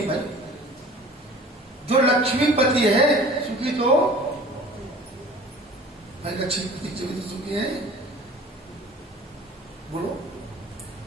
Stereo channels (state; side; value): normal; both; correlation 0.45